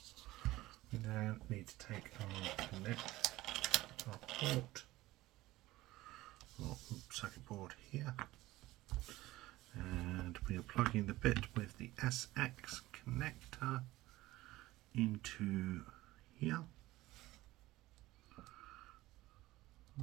We then need to take our port, or circuit board here, and we are plugging the bit with the SX connector into here.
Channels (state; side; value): quieter; left; 17.5 dB